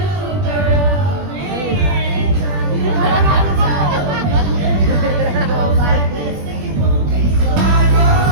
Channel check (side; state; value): left; late; 21 ms